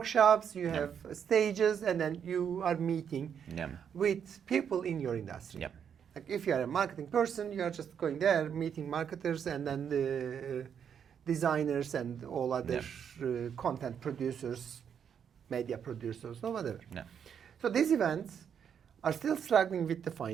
you have stages, and then you are meeting with people in your industry. Like if you are a marketing person, you are just going there, meeting marketers and then the designers and all other content producers, media producers, or whatever. So these events are still struggling with the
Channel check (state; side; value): quieter; left; 7.9 dB